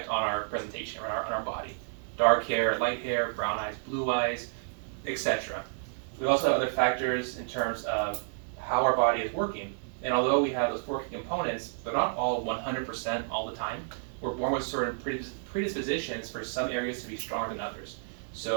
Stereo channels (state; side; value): silent; left; digital silence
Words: on our presentation, or on our body. Dark hair, light hair, brown eyes, blue eyes, etc. We also have other factors in terms of how our body is working. And although we have those four key components, they're not all 100% all the time. We're born with certain predispositions for some areas to be stronger than others.